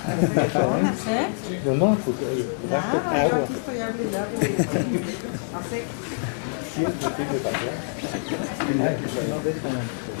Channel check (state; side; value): silent; right; digital silence